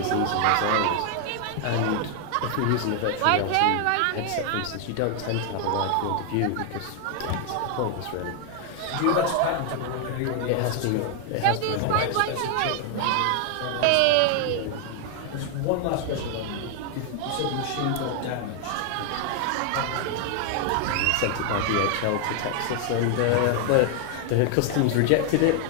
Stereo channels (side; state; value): both; different; correlation 0.00